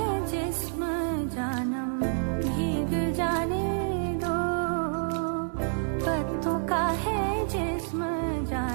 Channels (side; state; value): left; silent; 59 dB below the other